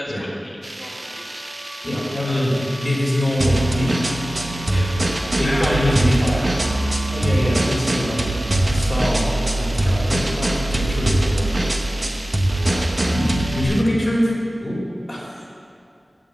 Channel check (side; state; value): both; normal; correlation 0.96